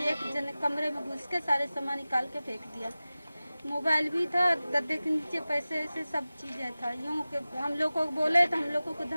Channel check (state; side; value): inverted; both; correlation -0.97